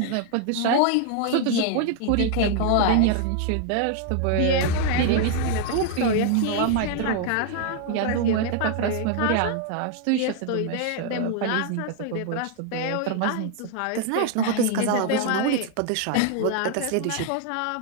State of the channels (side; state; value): both; different; correlation 0.00